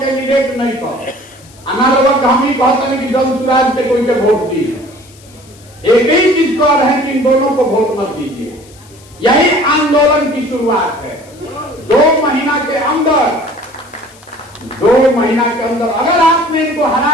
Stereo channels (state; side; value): noise; left; hiss, 25 dB below the sound